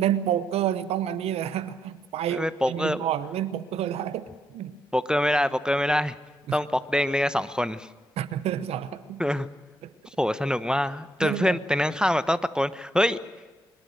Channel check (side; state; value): both; normal; correlation 0.76